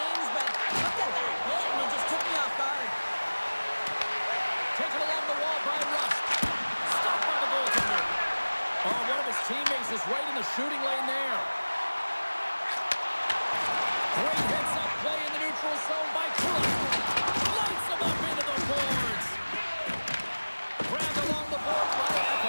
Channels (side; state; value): both; inverted; correlation -1.00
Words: but look at that hit, and it just took me off guard. Taken along the wall by Rust. Stopped by the goaltender. Oh, one of his teammates is right in the shooting lane there. Great heads-up play in the neutral zone by Kulak. Lights him up into the boards. Grabbed along the boards by